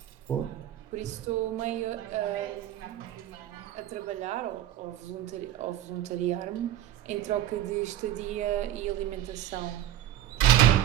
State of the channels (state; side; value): quieter; left; 12.3 dB